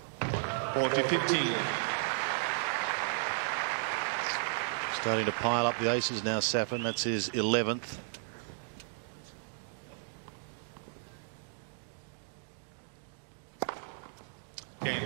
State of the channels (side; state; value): left; silent; digital silence